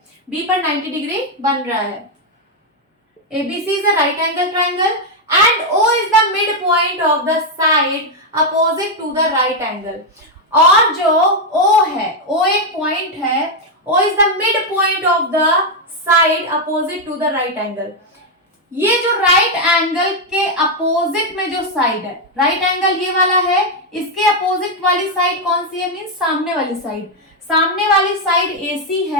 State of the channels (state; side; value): normal; both; correlation 0.02